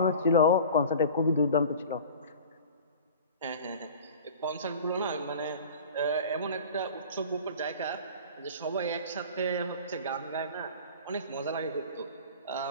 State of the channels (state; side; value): inverted; both; correlation -0.40